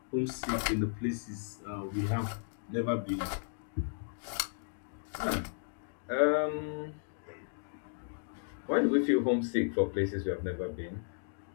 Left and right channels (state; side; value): silent; right; digital silence